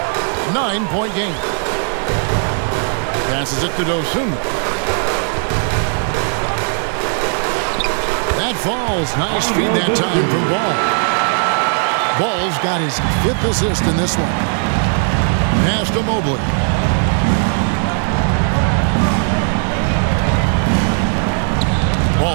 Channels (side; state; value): left; silent; 56 dB below the other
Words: 9-point game. Passes it to Dosunmu. That falls. Nice feed that time from Ball. Ball's got his 5th assist in this one. Pass to Mobley.